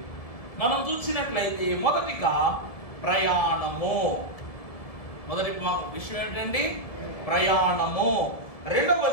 మనం చూసినట్లయితే మొదటిగా ప్రయాణము. మొదటి విషయం ఏంటండి? ప్రయాణము.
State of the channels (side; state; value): right; late; 1.9 ms